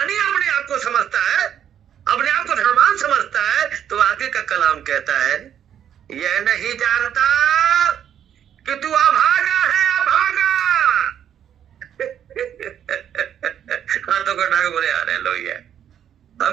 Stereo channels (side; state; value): left; quieter; 9.5 dB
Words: अपने आप को समझता है, अपने आप को धनवान समझता है, तो आगे का कलाम कहता है, यह नहीं जानता कि तू अभागा है, अभागा। हाथों को उठा के बोले हालेलुया।